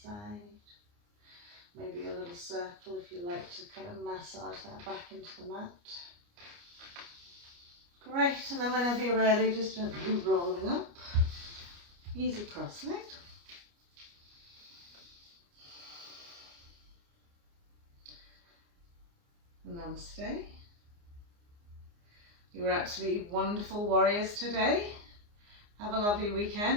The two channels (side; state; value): left; late; 29 ms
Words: side. Maybe a little circle if you like to kind of massage that back into the mat. Great, and then whenever you're ready, just gently rolling up. Easy cross-legged. Namaste. You were absolutely wonderful warriors today. Have a lovely